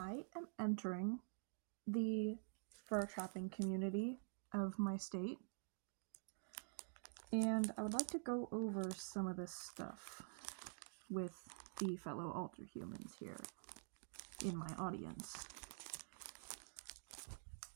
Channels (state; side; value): silent; left; digital silence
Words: am entering the fur trapping community of my state, and I would like to go over some of this stuff with the fellow alter humans here in my audience.